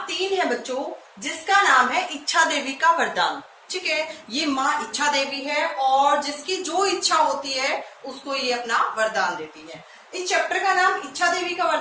3 है बच्चों, जिसका नाम है इच्छा देवी का वरदान, ठीक है। ये माँ इच्छा देवी है और जिसकी जो इच्छा होती है उसको ये अपना वरदान देती है। इस चैप्टर का नाम इच्छा देवी का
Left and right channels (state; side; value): identical; both; correlation 1.00